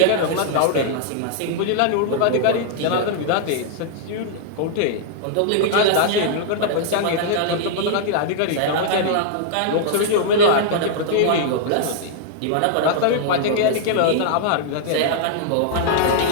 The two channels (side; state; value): both; different; correlation -0.01